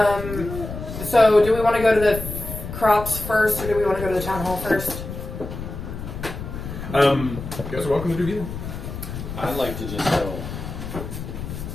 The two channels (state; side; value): noise; left; rumble, 8 dB below the sound